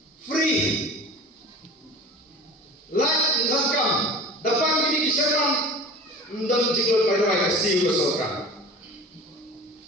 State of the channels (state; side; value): normal; both; correlation 0.38